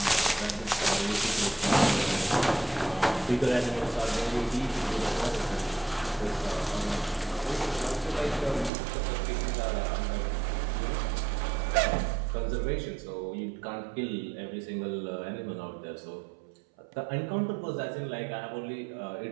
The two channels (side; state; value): left; drops out; at 8.7 s